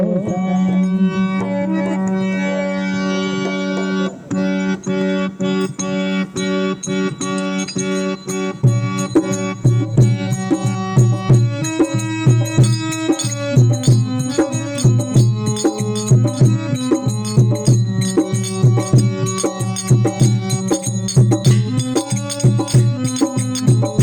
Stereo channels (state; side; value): identical; both; correlation 1.00